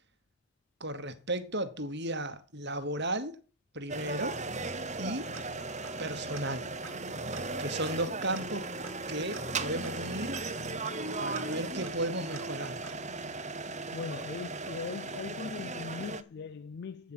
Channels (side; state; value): both; normal; correlation -0.05